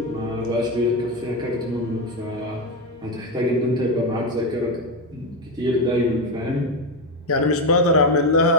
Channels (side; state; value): right; noise; hum, 29 dB below the sound